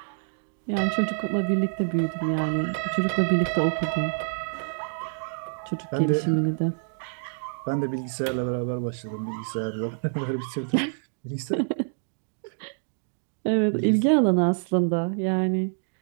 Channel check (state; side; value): silent; left; digital silence